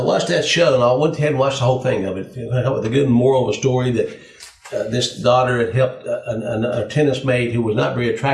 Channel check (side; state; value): both; identical; correlation 1.00